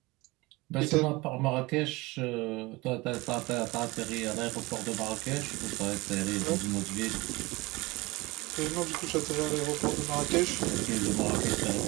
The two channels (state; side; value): quieter; left; 22.8 dB